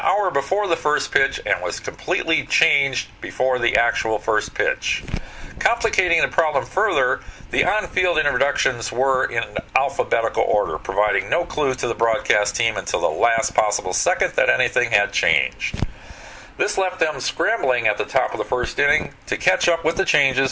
before the first pitch and was completely changed before the actual first pitch. Complicating the problem further, the on-field introductions were in alphabetical order, providing no clue to the broadcast team until the last possible second that anything had changed. This left them scrambling at the top of the first inning to catch up with the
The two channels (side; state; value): both; identical; correlation 1.00